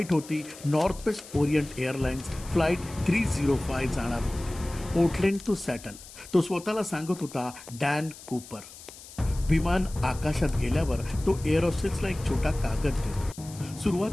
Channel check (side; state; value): left; noise; hiss, 17 dB below the sound